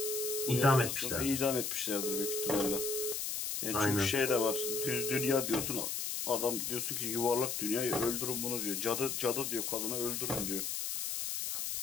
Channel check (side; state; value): left; noise; hiss, 2 dB below the sound